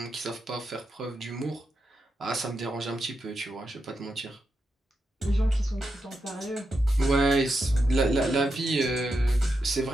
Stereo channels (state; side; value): normal; both; correlation 0.86